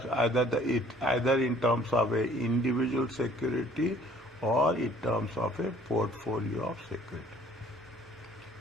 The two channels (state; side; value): normal; both; correlation 0.57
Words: either in terms of a individual security or in terms of a portfolio of security.